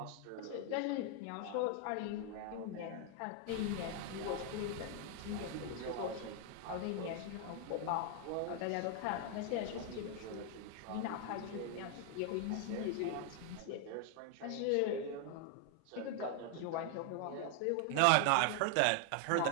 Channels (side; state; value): both; different; correlation 0.00